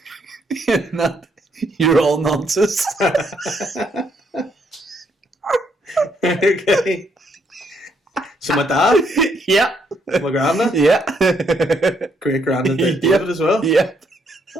In that you're all nonsense. Okay. So my dad? Yeah. My granddad? Yeah. Great granddad David as well? Yeah.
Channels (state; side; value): normal; both; correlation 0.73